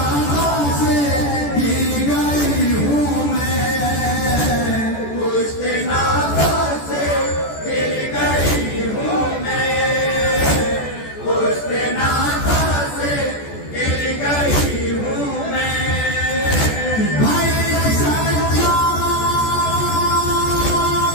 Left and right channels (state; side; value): late; right; 14 ms